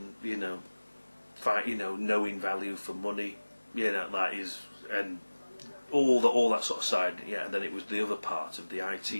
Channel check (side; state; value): both; inverted; correlation -1.00